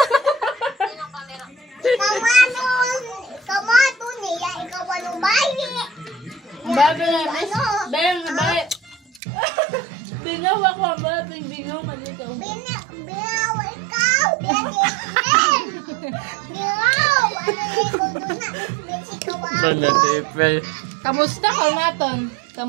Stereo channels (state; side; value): drops out; left; at 9.2 s